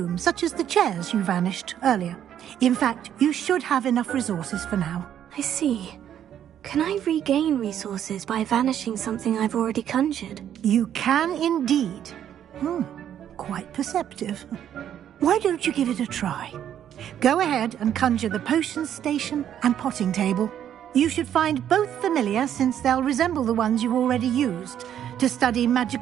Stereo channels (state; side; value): quieter; left; 10.1 dB